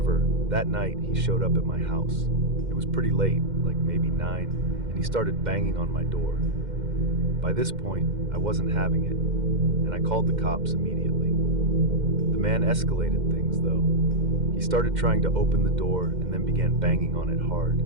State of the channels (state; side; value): late; left; 2.1 ms